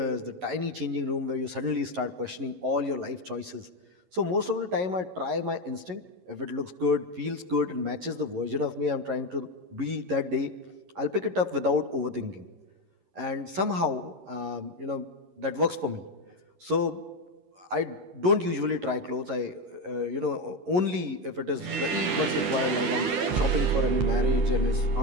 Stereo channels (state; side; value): late; left; 11 ms